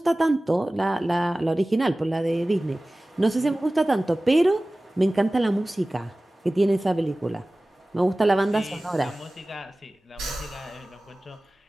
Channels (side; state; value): both; normal; correlation 0.97